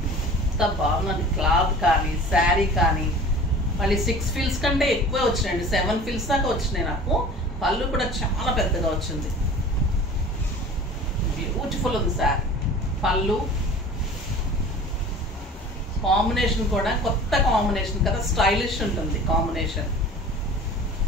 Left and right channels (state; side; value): normal; both; correlation 0.42